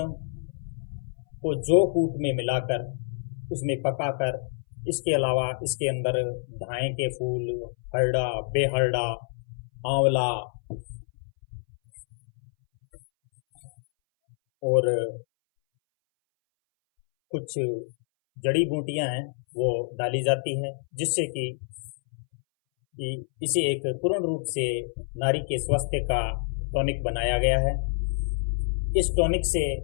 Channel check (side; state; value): right; silent; 60 dB below the other